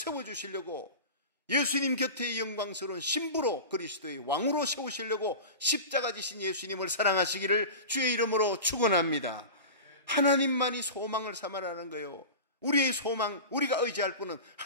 예수님 곁에 영광스러운 신부로 그리스도의 왕으로 세우시려고 십자가 지신 예수님을 사랑하시기를 주의 이름으로 축원합니다. 하나님만이 소망을 삼아라는 거예요. 우리의 소망, 우리가 의지할 분은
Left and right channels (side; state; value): both; inverted; correlation -0.31